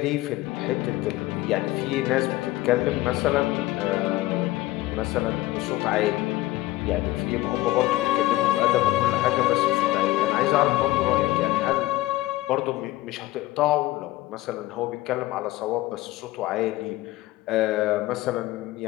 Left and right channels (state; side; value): quieter; right; 17.5 dB